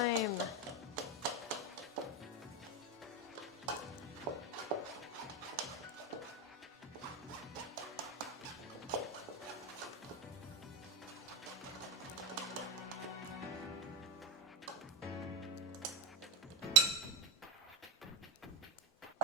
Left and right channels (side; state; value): both; normal; correlation 0.11